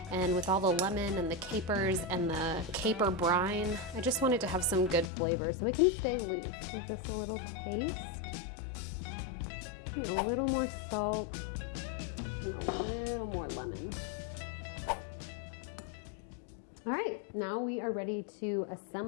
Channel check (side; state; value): right; drops out; at 5.1 s